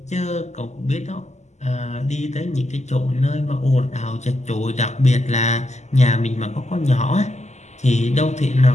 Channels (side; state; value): right; late; 0.33 ms